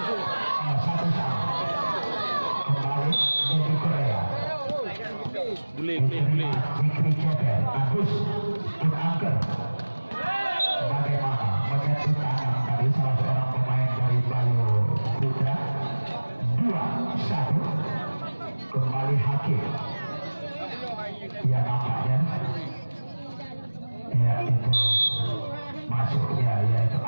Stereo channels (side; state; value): both; inverted; correlation -1.00